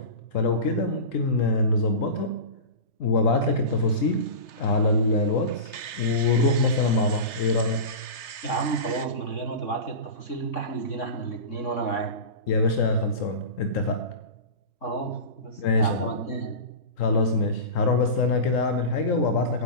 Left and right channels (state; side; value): late; right; 3.3 ms